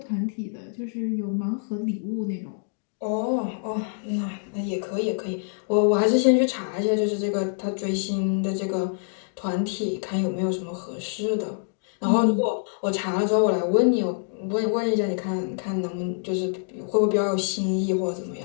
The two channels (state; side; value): silent; right; digital silence